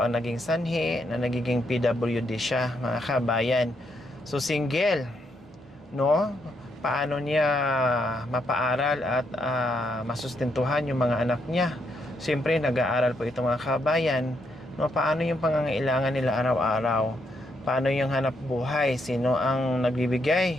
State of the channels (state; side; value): normal; both; correlation 0.77